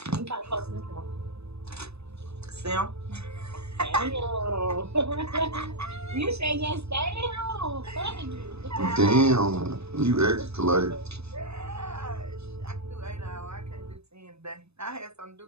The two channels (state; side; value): late; left; 0.79 ms